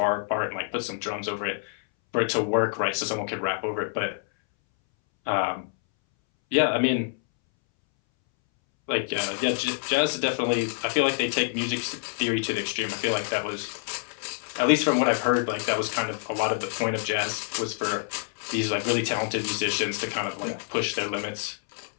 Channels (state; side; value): silent; right; 60 dB below the other